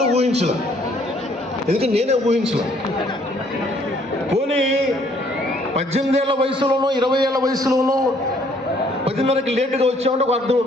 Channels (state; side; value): normal; both; correlation 0.64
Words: ఊహించలే. ఎందుకంటే నేనే ఊహించలే. పోనీ 18 ఏళ్ల వయసులోనో 20 ఏళ్ల వయసులోనో 10:30కి లేటుగా వచ్చామంటే ఒక అర్థం